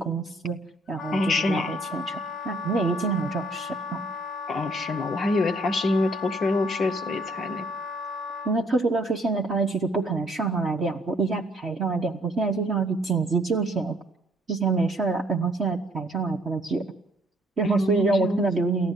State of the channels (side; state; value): both; normal; correlation 0.64